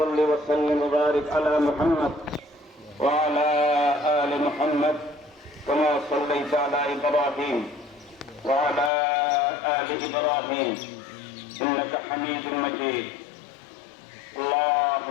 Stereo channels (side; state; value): right; drops out; at 8.9 s